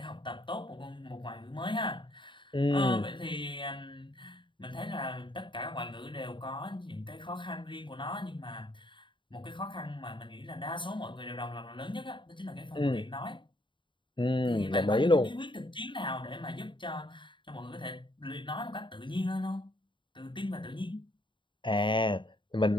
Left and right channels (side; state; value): right; late; 0.23 ms